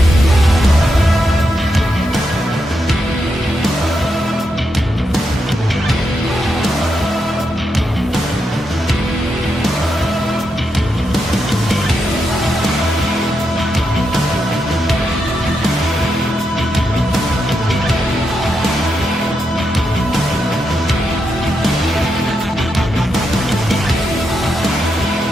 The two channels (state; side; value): normal; both; correlation 0.84